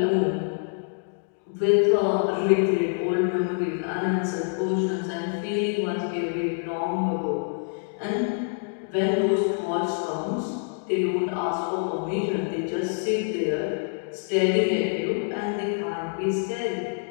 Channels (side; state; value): right; silent; digital silence